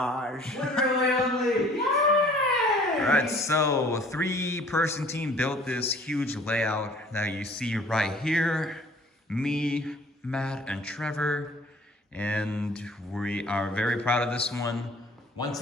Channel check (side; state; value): both; normal; correlation 0.53